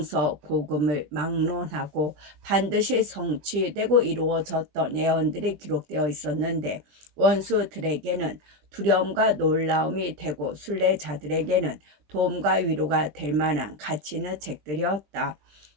막론하고 반드시 성취되고 이루어졌던 예언들이 기록되어 있었는데 원수들에게는 두려움과 놀라움이 되고 순례자들에게는 도움과 위로가 될 만한 가치 있는 책들이었다.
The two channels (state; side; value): late; left; 20 ms